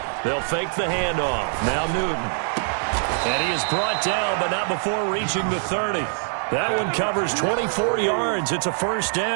They'll fake the handoff. Now Newton. And he is brought down, but not before reaching the 30. That one covers 24 yards. It's a first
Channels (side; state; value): left; silent; digital silence